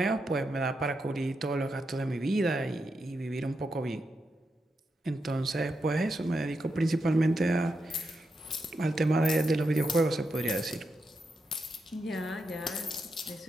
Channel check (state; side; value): normal; both; correlation 0.85